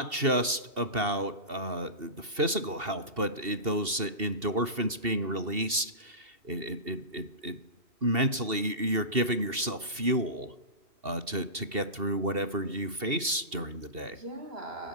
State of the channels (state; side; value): late; left; 2.7 ms